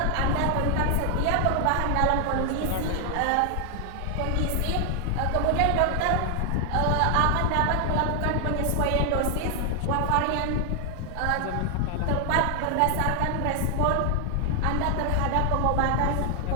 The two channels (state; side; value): different; both; correlation 0.00